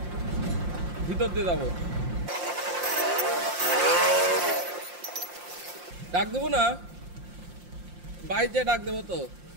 ভিতর দিয়ে যাবো। ডাক দেবো না, বাইক দিয়ে ডাক দেবো তো,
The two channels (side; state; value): left; late; 5.7 ms